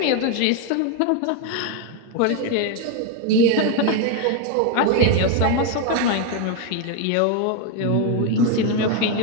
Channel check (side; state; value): both; different; correlation 0.01